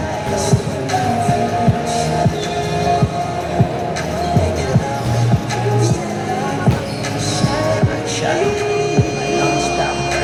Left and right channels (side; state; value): both; identical; correlation 1.00